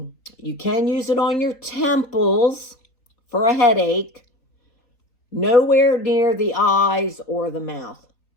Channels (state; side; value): late; right; 3.9 ms